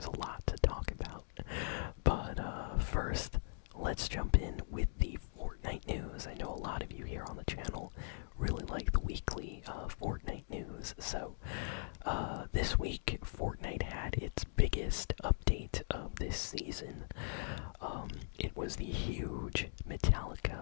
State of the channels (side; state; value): right; silent; digital silence